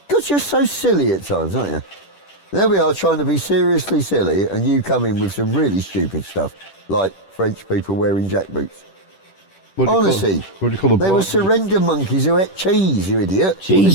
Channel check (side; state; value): right; late; 10 ms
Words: God, you're so silly at times, aren't you? There we are trying to be seriously silly, and you come in with some really stupid stuff, like French people wearing jack boots. What do you call- Honestly, what do you call a they were blind? surrender monkeys who ate cheese, you idiot. Cheese the